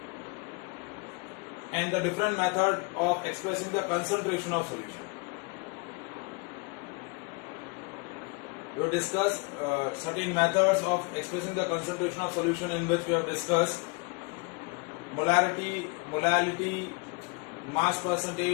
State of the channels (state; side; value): quieter; right; 29.5 dB